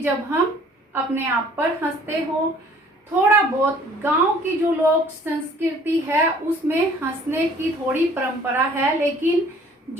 जब हम अपने आप पर हंसते हो। थोड़ा बहुत गांव की जो लोक संस्कृति है उसमें हंसने की थोड़ी परंपरा है, लेकिन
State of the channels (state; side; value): normal; both; correlation 0.55